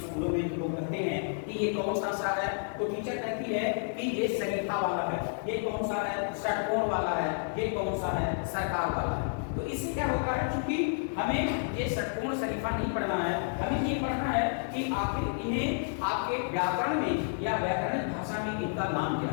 स्कूलों में। लोग कहते हैं कि ये कौन सा सा है, तो टीचर कहती है कि ये सरीखा वाला है, ये कौन सा है? षटकोण वाला है, ये कौन सा है? सरकार वाला है। तो इससे क्या होता है, क्योंकि हमें ये षटकोण शरीफा नहीं पढ़ना है, हमें ये पढ़ना है कि आखिर इन्हें आपके व्याकरण में या व्याकरण भाषा में इनका नाम क्या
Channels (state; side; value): silent; right; digital silence